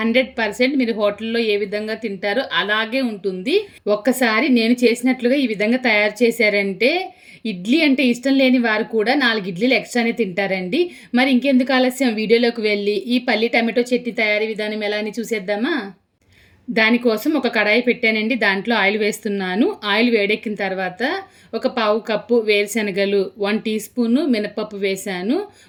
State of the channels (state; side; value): identical; both; correlation 1.00